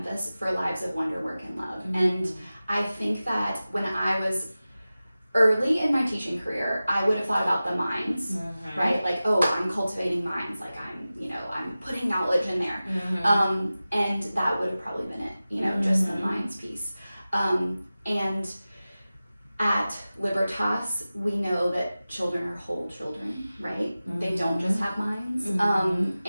for lives of wonder, work, and love. And I think that when I was early in my teaching career, I would have thought about the minds, right? Like, oh, I'm cultivating minds, like I'm putting knowledge in there. And that would have probably been it, just the minds piece. And at Libertas, we know that children are whole children, right? They don't just have minds.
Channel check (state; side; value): inverted; both; correlation -0.96